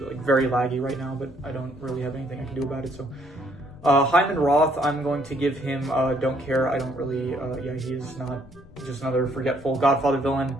very laggy right now, but I don't really have anything I can do about it. So. Hyman Roth, I'm going to give him don't care. I don't really, he is not just another forgetful Godfather villain.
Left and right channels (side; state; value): left; noise; rumble, 21 dB below the sound